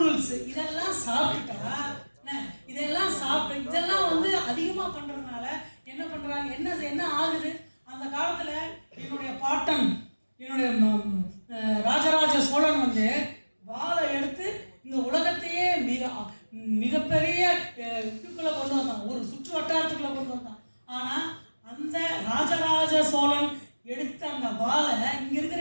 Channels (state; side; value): inverted; both; correlation -1.00